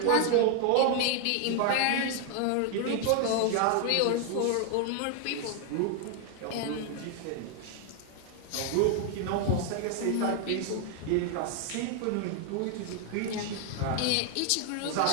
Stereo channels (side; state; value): both; different; correlation 0.00